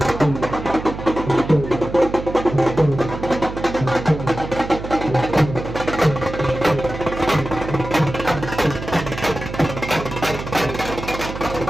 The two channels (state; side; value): noise; right; hum, 9 dB below the sound